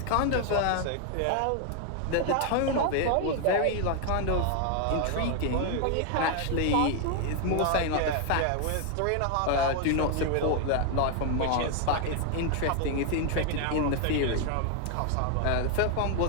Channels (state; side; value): different; both; correlation 0.00